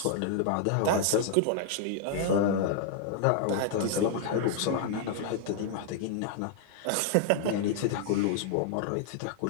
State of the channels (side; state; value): both; different; correlation 0.00